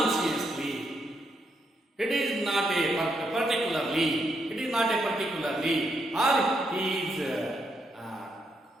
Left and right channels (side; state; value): both; normal; correlation 0.78